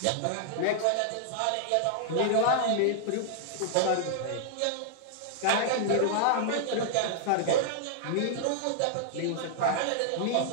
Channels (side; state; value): both; different; correlation -0.01